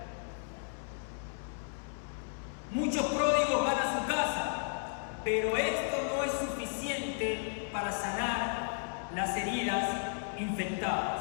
Muchos pródigos van a su casa, pero esto no es suficiente para sanar las heridas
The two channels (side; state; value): right; silent; 55 dB below the other